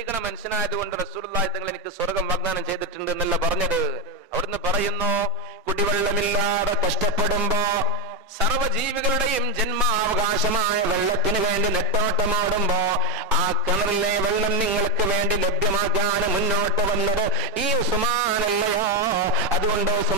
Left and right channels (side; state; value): both; normal; correlation 0.08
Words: മനുഷ്യനായതുകൊണ്ട് റസൂലുള്ളാഹി തങ്ങൾ എനിക്ക് സ്വർഗം വാഗ്ദാനം ചെയ്തിട്ടുണ്ട് എന്നല്ല പറഞ്ഞത്. അവിടുന്ന് പറയുന്നു, കുടിവെള്ളമില്ലാതെ കഷ്ടപ്പെടുമ്പോ സർവജീവികളുടെയും ജന്മാവകാശമായ വെള്ളത്തിന് വേണ്ടി നെട്ടോട്ടമാടുമ്പോ ആ കിണറിലെ വെള്ളം നിങ്ങൾക്ക് വേണ്ടി ലഭ്യമാക്കാൻ മുന്നോട്ട് വന്നത് ഈ ഉസ്മാനല്ലയോ? അതുകൊണ്ട്